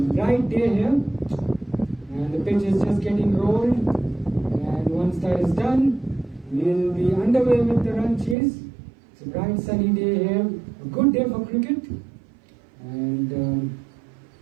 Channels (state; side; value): drops out; left; at 8.3 s